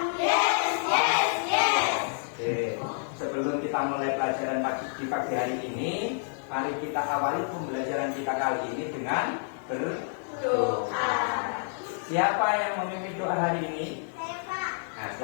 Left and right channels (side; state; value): right; silent; digital silence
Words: yes, yes, yes. Oke, sebelum kita mulai pelajaran di pagi hari ini, mari kita awali pembelajaran kita kali ini dengan berdoa. Siapa yang memimpin doa hari ini? Nah,